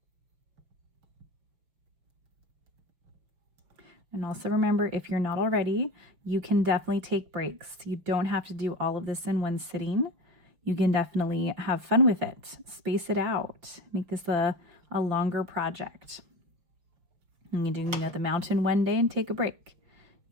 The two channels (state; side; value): late; left; 5.9 ms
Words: And also remember, if you're not already, you can definitely take breaks. You don't have to do all of this in one sitting. You can definitely have fun with it. Space it out. Make this a longer project. You can do, you know, the mountain one day and take a break.